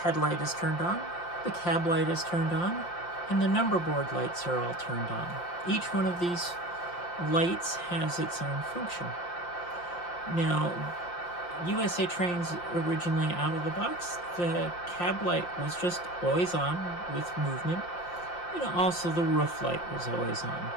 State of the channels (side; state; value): right; late; 5.7 ms